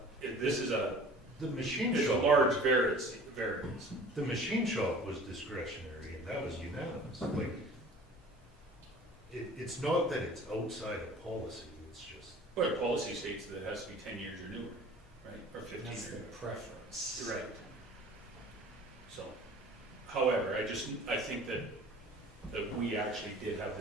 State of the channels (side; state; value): both; normal; correlation 0.45